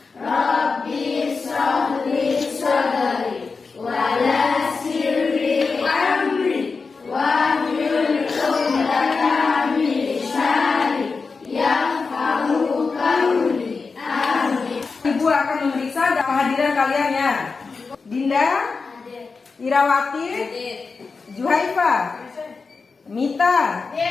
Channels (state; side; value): quieter; right; 4.6 dB